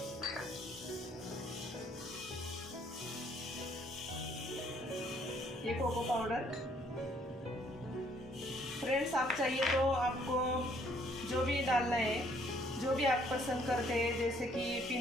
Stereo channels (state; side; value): normal; both; correlation 0.64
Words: ये कोको पाउडर फ्रेंड्स, आप चाहिए तो आपको जो भी डालना है, जो भी आप पसंद करते हैं, जैसे कि